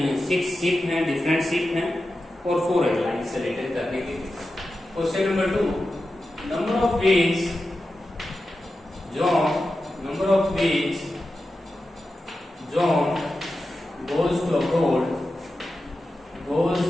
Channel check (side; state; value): both; normal; correlation 0.92